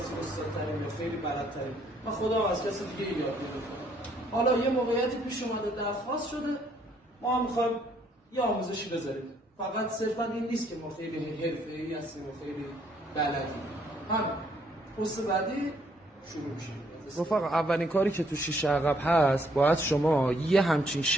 استادترین یا خیلی بلدترین. من خودم از کسی دیگه یاد گرفتم. حالا یه موقعیتی پیش اومده درخواست شده، ما هم میخوایم یه آموزشی بذاریم. فقط صرفا این نیست که ما خیلی حرفه‌ای هستیم و خیلی بلدیم. هم پست بعدی شروع میشه. رفقا اولین کاری که تو شیشه عقب هست، باید شما یه همچین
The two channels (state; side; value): normal; both; correlation 0.68